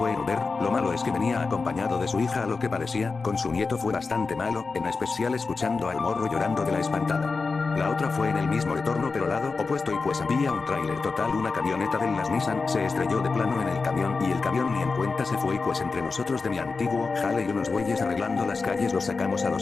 en Uber. Lo malo es que venía acompañado de su hija a lo que parecía, con su nieto fue bastante malo, en especial escuchando al morro llorando de la espantada. La otra fue en el mismo retorno pero lado opuesto y pues había un tráiler total, una camioneta de las Nissan se estrelló de plano en el camión y el camión ni en cuenta se fue y pues entre nosotros de mi antiguo jale y unos güeyes arreglando las calles los sacamos a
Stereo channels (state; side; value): quieter; right; 4.3 dB